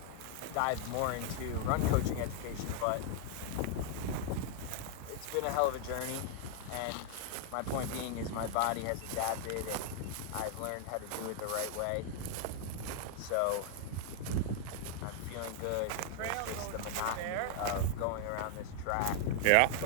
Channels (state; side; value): different; both; correlation 0.00